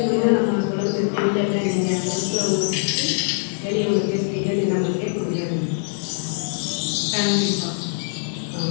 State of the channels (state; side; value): silent; right; 60 dB below the other